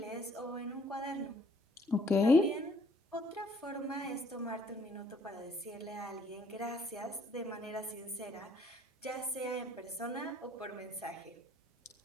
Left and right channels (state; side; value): normal; both; correlation 0.62